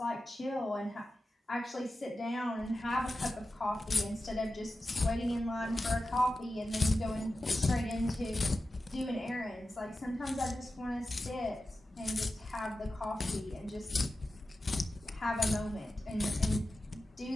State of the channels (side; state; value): both; normal; correlation 0.93